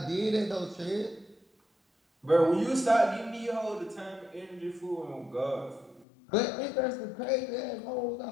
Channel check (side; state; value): right; drops out; at 6.1 s